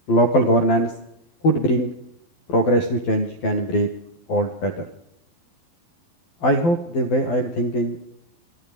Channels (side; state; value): right; late; 12 ms